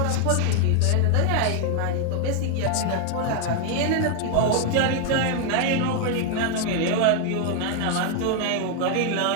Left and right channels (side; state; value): both; different; correlation 0.00